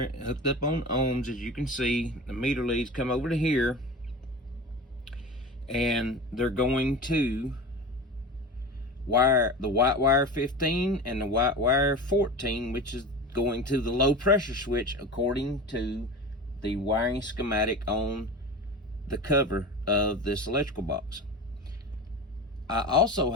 hooked up on ohms. As you can see, the meter leads come over to here, and they're going to wire the white wire 15 and the white wire 14, which is going to the low pressure switch according to the wiring schematic on the cover of this electrical box. I also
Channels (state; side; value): normal; both; correlation 0.30